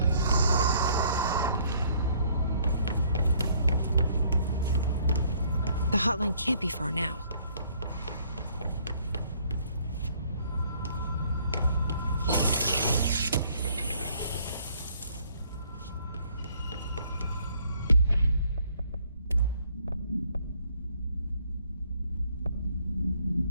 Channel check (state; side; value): inverted; both; correlation -0.63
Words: The hotline can't be far now.